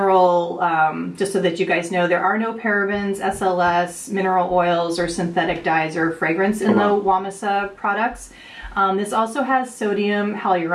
just so that you guys know, there are no parabens, SLS, mineral oils, or synthetic dyes or fragrance in the Whamisa products. This also has sodium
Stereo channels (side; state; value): both; identical; correlation 1.00